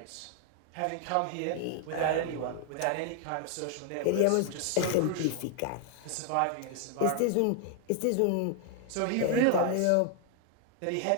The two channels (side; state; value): both; different; correlation 0.00